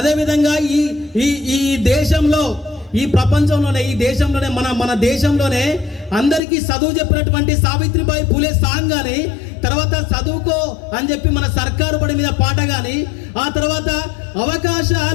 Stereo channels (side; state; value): right; drops out; at 6.4 s